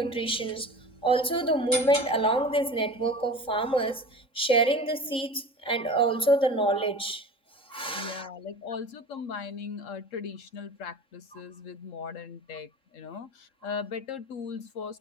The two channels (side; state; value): right; late; 3.7 ms